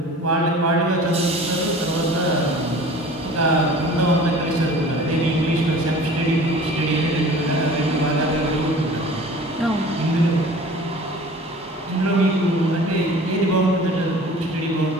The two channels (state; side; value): normal; both; correlation 0.44